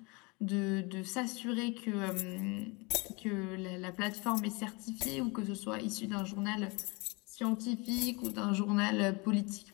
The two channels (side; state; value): right; quieter; 28.0 dB